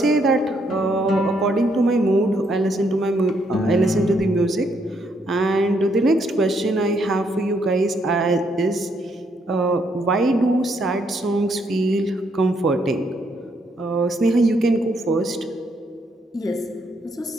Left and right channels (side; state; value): both; normal; correlation 0.73